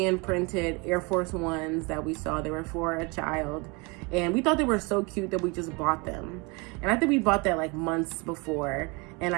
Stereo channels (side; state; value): left; quieter; 28.7 dB